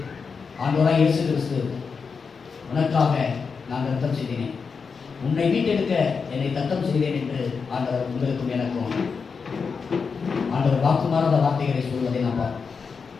ஆண்டவராய் இயேசு கிறிஸ்து, உனக்காக நான் ரத்தம் செய்தேன், உன்னை மீட்டெடுக்க என்னை தத்தம் செய்தேன் என்று ஆண்டவர் உங்களுக்கும் எனக்கும் ஆண்டவர் வாக்குமாறாத வார்த்தைகளை சொல்வதை நாம் பார்ப்போம்.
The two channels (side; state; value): right; quieter; 5.4 dB